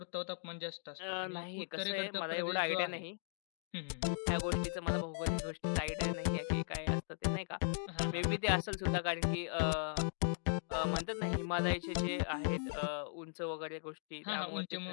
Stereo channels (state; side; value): silent; right; digital silence